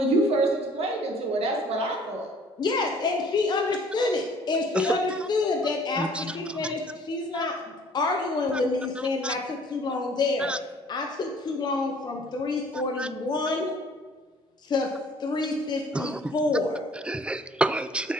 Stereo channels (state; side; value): normal; both; correlation 0.55